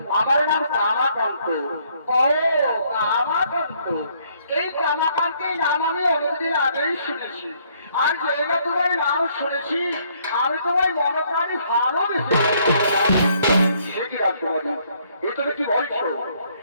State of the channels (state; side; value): inverted; both; correlation -0.67